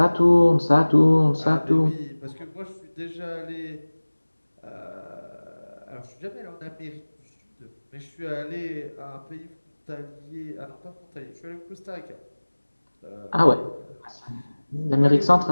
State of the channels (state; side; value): inverted; both; correlation -1.00